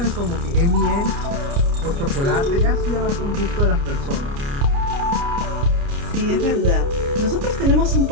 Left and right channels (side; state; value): left; late; 29 ms